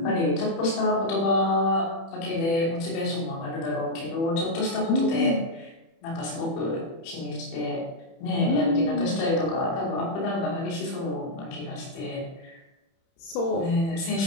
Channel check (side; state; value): right; late; 30 ms